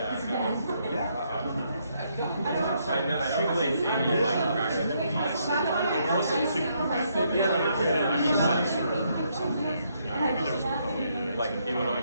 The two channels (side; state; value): both; inverted; correlation -0.74